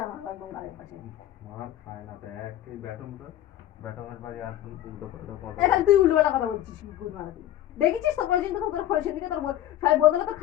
আমার একদম গালের পাশে। মার খায় না তো একই ব্যাটমের বাড়ি আর উল্টো পাল্টা কথা। এখন তুই উল্টো পাল্টা কথা বলছিস কি গুড মারাতি। দেখেছিস তো প্রয়োজন তো তোর ফোন সেদিকে তোর সবাই বদলে তো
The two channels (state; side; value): quieter; right; 12.6 dB